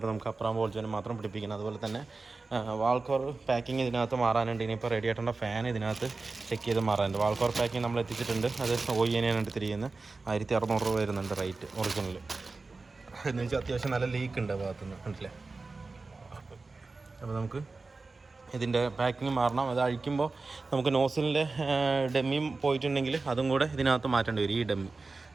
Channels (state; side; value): quieter; left; 3.8 dB